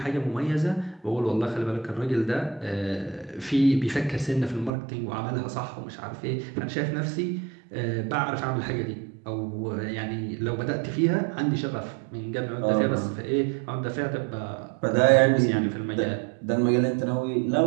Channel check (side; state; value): left; drops out; at 4.7 s